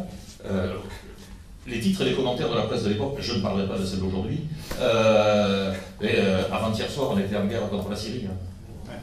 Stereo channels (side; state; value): both; identical; correlation 1.00